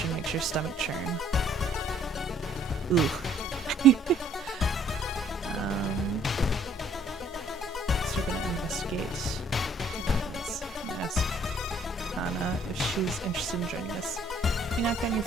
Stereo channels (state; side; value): normal; both; correlation 0.61